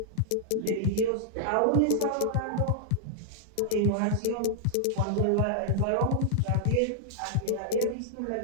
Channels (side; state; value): both; different; correlation -0.01